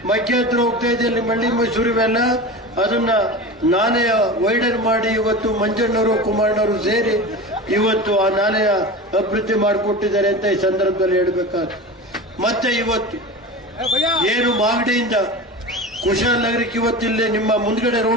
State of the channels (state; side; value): normal; both; correlation 0.30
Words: ಮಧ್ಯ ಹತ್ರ ಹೋಗ್ತಾ ಇದೆ, ಅಲ್ಲಿ ಮಂಡಿ ಮೈಸೂರು ಇವೆಲ್ಲ, ಅದನ್ನ ನಾಲೆಯ ವೈಡರ್ ಮಾಡಿ ಇವತ್ತು ಮಂಜಣ್ಣವರು ಕುಮಾರಣ್ಣವರು ಸೇರಿ ಇವತ್ತು ಆ ನಾಲೆಯ ಅಭಿವೃದ್ಧಿ ಮಾಡಿಕೊಟ್ಟಿದ್ದಾರೆ ಅಂತ ಈ ಸಂದರ್ಭದಲ್ಲಿ ಹೇಳಬೇಕಾದ್ರು. ಮತ್ತೆ ಇವತ್ತು ಏನು ಮಾಗಡಿಯಿಂದ ಕುಶಾಲನಗರಕ್ಕೆ ಇವತ್ತಿಲ್ಲೇ ನಿಮ್ಮ ಮುಂದ್ಗಡೆ